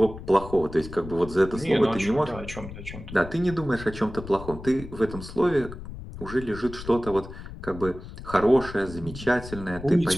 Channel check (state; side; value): noise; left; rumble, 12 dB below the sound